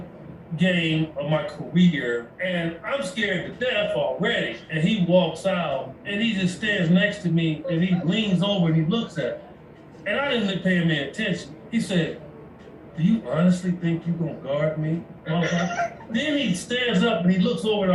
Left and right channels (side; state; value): both; identical; correlation 1.00